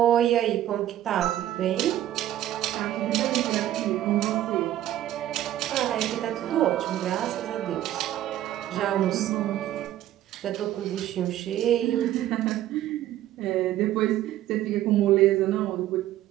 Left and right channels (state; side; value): quieter; left; 13.0 dB